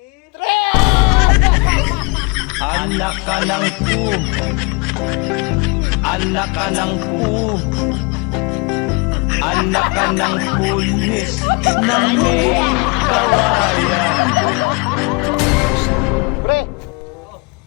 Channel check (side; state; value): right; quieter; 30.4 dB